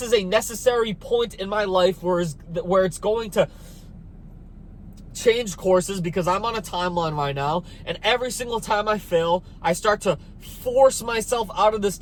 is a necessary point in my life where it's going to change courses, because I'm on a timeline right now, and every single time I fail, I start to force myself out of this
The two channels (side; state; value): both; identical; correlation 1.00